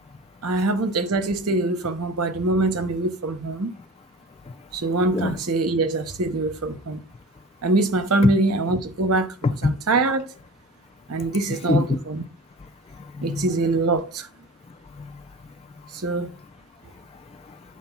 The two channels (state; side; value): normal; both; correlation 0.39